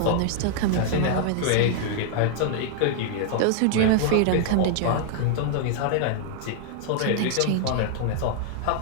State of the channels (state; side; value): different; both; correlation 0.00